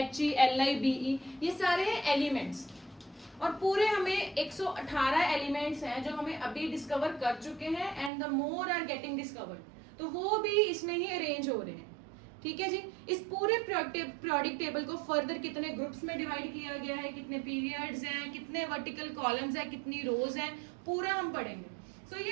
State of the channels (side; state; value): left; drops out; at 8.1 s